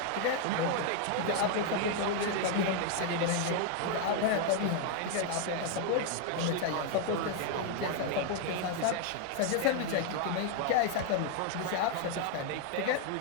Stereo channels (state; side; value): different; both; correlation 0.00